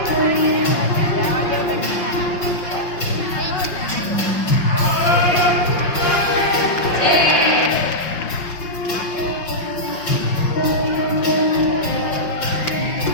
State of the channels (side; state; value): right; late; 5.7 ms